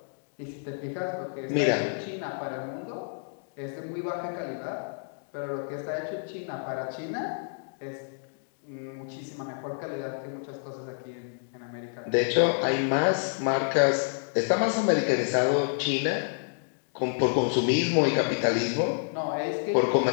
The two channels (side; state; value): right; silent; digital silence